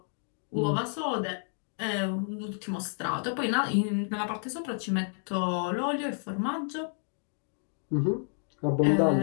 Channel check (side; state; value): right; silent; 58 dB below the other